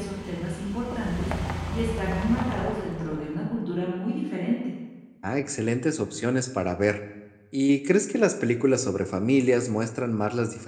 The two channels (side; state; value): both; identical; correlation 1.00